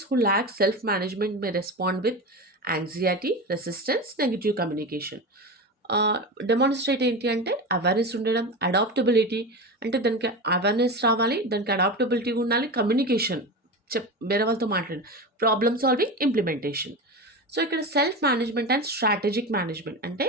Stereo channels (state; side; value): normal; both; correlation 0.24